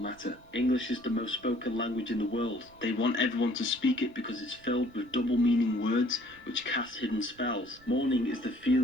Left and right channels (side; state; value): right; noise; rumble, 26 dB below the sound